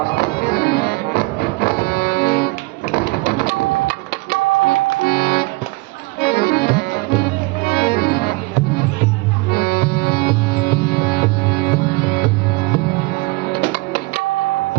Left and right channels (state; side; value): quieter; left; 23.2 dB